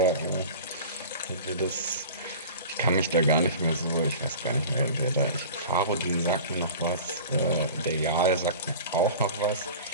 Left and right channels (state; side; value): inverted; both; correlation -0.37